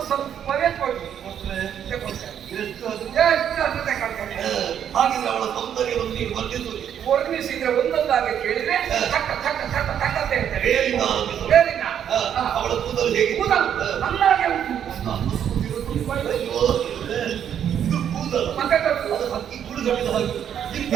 ಸ್ವಲ್ಪವೇ ಕೊಡಿ. ಹಾಗಿದ್ರೆ ಅವಳ ಸೌಂದರ್ಯವನ್ನು ನೀನು ವರ್ಣಿಸಿದ್ರೆ ಒಂದೊಂದಾಗಿ ಕೇಳಿದ್ರೆ ತಕ್ಕ ತಕ್ಕ ತಕ್ಕ ತಕ್ಕ ಅಂತ ಹೇಳ್ತಾರೆ. ಅವಳ ಕೂದಲು ಹೇಗೆ? ಕೂದಲು ನನ್ನಾಗೆ ಉಂಟು. ಇದು ಕೂದಲು ಮತ್ತೆ ಹಕ್ಕಿ ಕುಡಿದೊಡ್ಡಿದ ಹಾಗೆ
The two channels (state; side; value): quieter; left; 9.2 dB